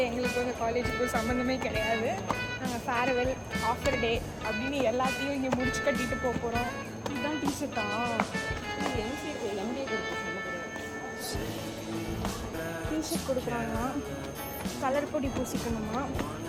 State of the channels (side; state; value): both; identical; correlation 1.00